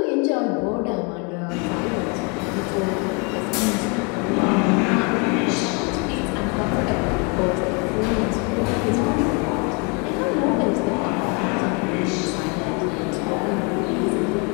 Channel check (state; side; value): quieter; right; 32.1 dB